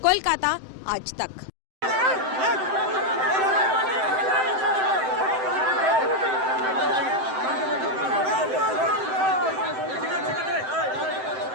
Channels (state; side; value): late; left; 7.8 ms